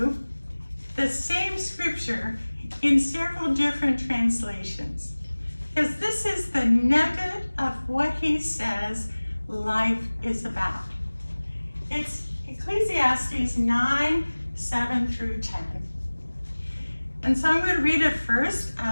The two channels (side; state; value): both; inverted; correlation -1.00